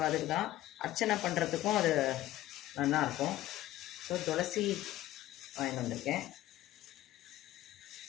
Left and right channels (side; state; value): right; quieter; 14.8 dB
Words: அதுக்கு தான் அர்ச்சனை பண்ணுறதுக்கும் அது நல்லாயிருக்கும். ஸோ துளசி வாங்கிட்டு வந்திருக்கேன்.